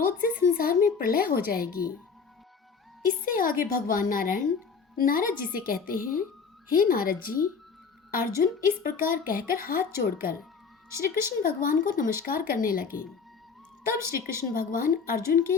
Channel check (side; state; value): right; quieter; 5.5 dB